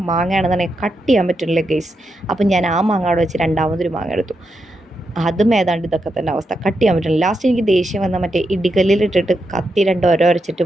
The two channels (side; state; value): both; normal; correlation 0.84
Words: മാങ്ങയാണെന്നുണ്ടെങ്കിൽ കട്ട് ചെയ്യാൻ പറ്റുന്നില്ല ഗൈസ്. അപ്പം ഞാൻ ആ മാങ്ങ അവിടെ വെച്ച് രണ്ടാമതൊരു മാങ്ങ എടുത്തു. അതും ഏതാണ്ട് ഇതൊക്കെ തന്നെ അവസ്ഥ, കട്ട് ചെയ്യാൻ പറ്റില്ല. ലാസ്റ്റ് എനിക്ക് ദേഷ്യം വന്ന മറ്റേ ഇടികല്ലിലിട്ടിട്ട് കത്തി 2 ഒരച്ചിട്ട്